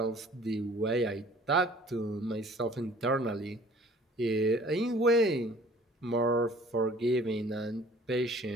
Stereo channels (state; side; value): normal; both; correlation 0.52